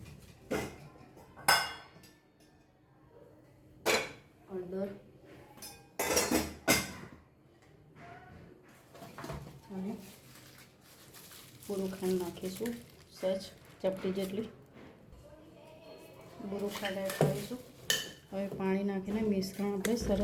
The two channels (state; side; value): identical; both; correlation 1.00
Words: હળદર અને પૂરું ખાંડ નાખીશું, સહેજ ચપટી જેટલી પૂરું ખાંડ એડ કરીશું. હવે પાણી નાખીને મિશ્રણ આપણે